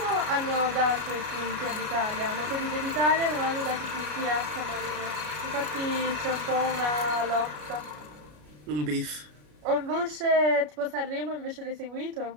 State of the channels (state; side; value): late; left; 33 ms